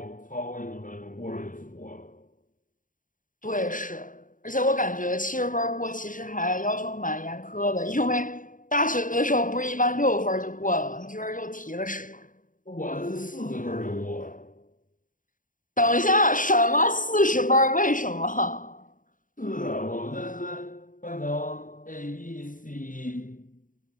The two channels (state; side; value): late; right; 0.39 ms